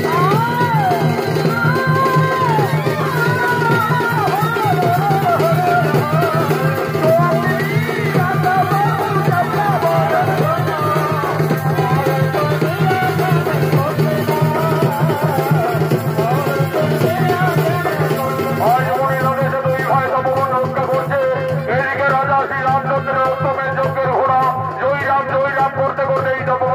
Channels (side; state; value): both; identical; correlation 1.00